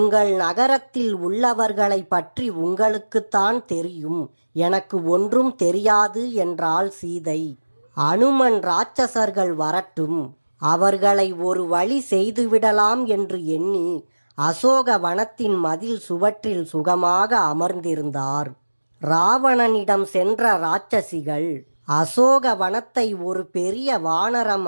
நகரத்தில் உள்ளவர்களை பற்றி உங்களுக்குத்தான் தெரியும், எனக்கு ஒன்றும் தெரியாது என்றாள் சீதை. அனுமன் இராட்சசர்கள் வரட்டும், அவர்களை ஒரு வழி செய்துவிடலாம் என்று எண்ணி அசோக வனத்தின் மதில் சுவற்றில் சுகமாக அமர்ந்திருந்தார். ராவணனிடம் சென்ற இராட்சசிகள் அசோக வனத்தை ஒரு பெரிய வானரம்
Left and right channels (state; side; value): inverted; both; correlation -1.00